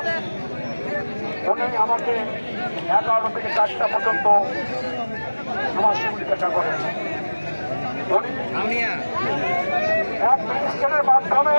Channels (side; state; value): both; inverted; correlation -1.00